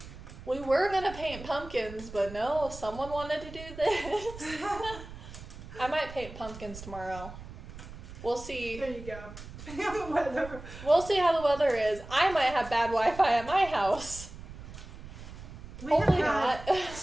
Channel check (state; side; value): noise; right; rumble, 14 dB below the sound